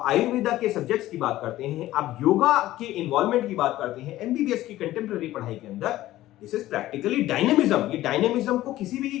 आयुर्वेदा के सब्जेक्ट्स की बात करते हैं, आप योगा के इन्वॉल्वमेंट की बात करते हैं एमबीबीएस की कंटेम्पररी पढ़ाई के अंदर। This is practically dynamism. ये डायनेमिज्म को किसी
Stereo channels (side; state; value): right; quieter; 15.3 dB